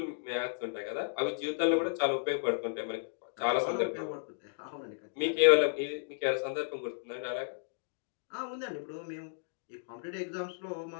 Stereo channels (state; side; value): silent; right; digital silence